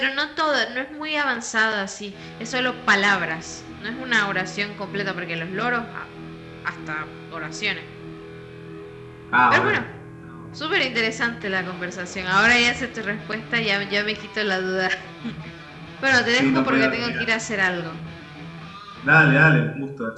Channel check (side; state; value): both; identical; correlation 1.00